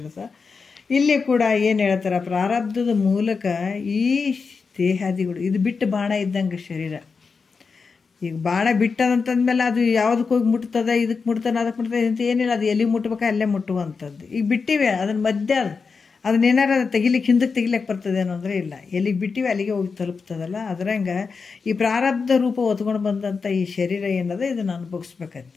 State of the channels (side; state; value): right; quieter; 5.0 dB